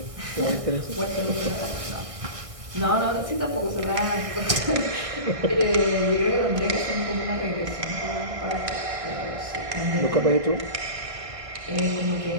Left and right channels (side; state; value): left; late; 1.6 ms